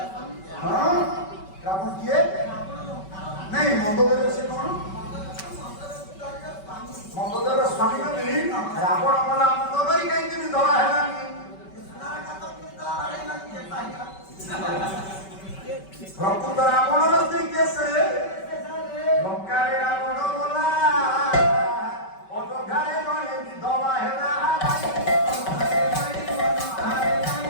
হ্যাঁ, রাবণ কিয়ে नहीं मंदोदर से कौन मंदोदर स्वामी ने नहीं रावण वाला मंदोदर ही कहीं भी दवा है ना प्रकृत रावण रस्ते कैसे लंका रे रावण बोला अयोध्या रे गणे भी दवा है ना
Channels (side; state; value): right; late; 5.2 ms